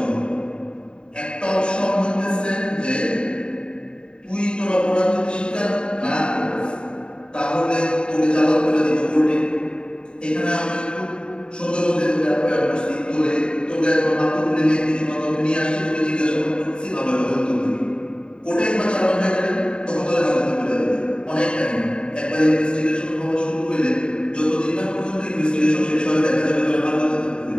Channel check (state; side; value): late; right; 0.050 ms